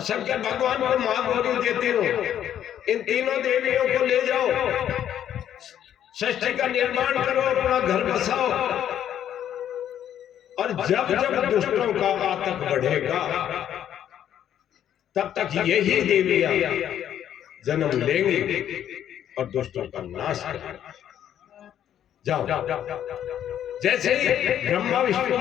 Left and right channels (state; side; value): quieter; right; 10.3 dB